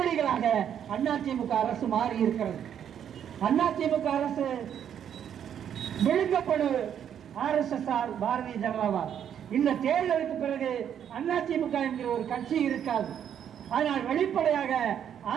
அதிமுக அரசு மாறி இருக்கிறது. அதிமுக அரசு விழுங்கப்படு RSS பாரதிய ஜனதாவால். இந்த தேர்தலுக்கு பிறகு அதிமுக என்கிற ஒரு கட்சி இருக்காது. ஆனால் வெளிப்படையாக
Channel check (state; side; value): quieter; left; 9.1 dB